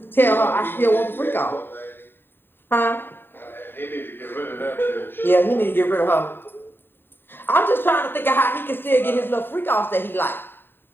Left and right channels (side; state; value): right; late; 0.099 ms